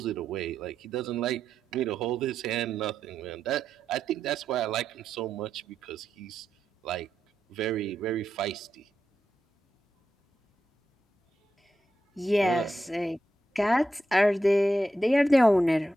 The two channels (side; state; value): both; normal; correlation 0.85